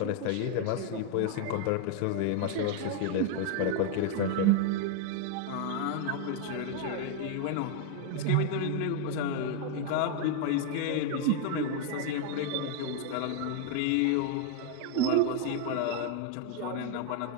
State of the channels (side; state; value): both; different; correlation 0.01